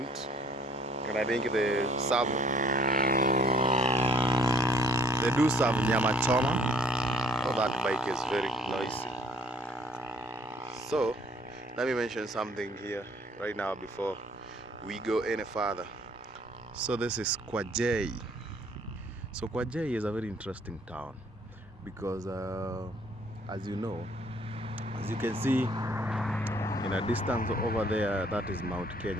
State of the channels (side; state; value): both; normal; correlation 0.58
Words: and I think they do serve nyama choma. So that bike is very noisy. So let me mention something here right now before we go any further. So this is Kwajei. So Kwajei is a very interesting town because as you know, as you can see in a distance over there, that is Mount